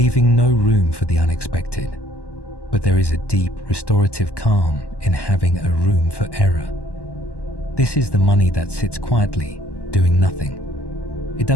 no room for the unexpected. But there is a deep, restorative calm in having a room for error. This is the money that sits quietly, doing nothing. It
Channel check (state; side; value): late; right; 1.1 ms